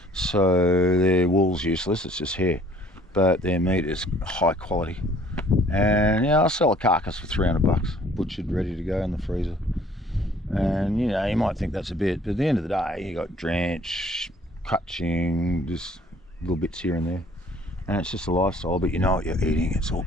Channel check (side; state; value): both; normal; correlation 0.57